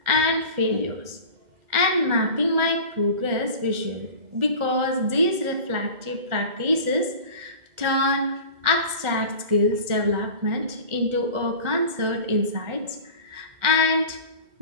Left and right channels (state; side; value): late; left; 2.1 ms